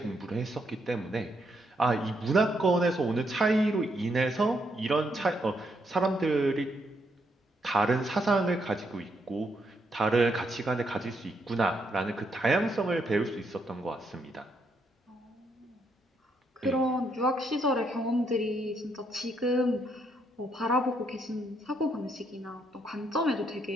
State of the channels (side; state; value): both; normal; correlation 0.76